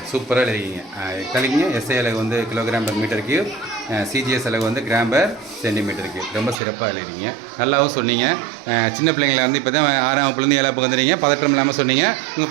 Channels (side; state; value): left; drops out; at 6.6 s